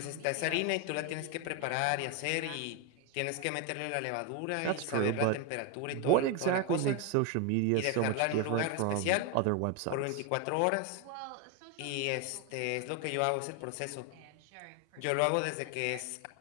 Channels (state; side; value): different; both; correlation 0.02